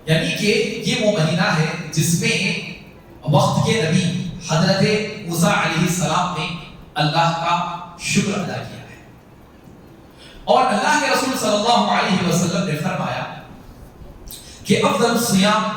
یعنی کہ یہ وہ مہینہ ہے جس میں وقت کے نبی حضرت موسیٰ علیہ السلام نے اللہ کا شکر ادا کیا ہے، اور اللہ کے رسول صلی اللہ علیہ وسلم نے فرمایا کہ افضل الصیام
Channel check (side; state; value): both; identical; correlation 1.00